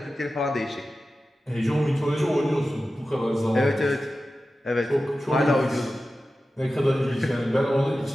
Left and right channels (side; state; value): both; normal; correlation 0.94